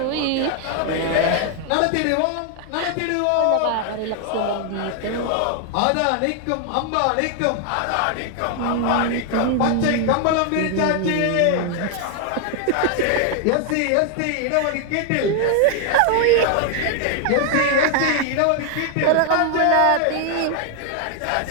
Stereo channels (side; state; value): both; different; correlation 0.00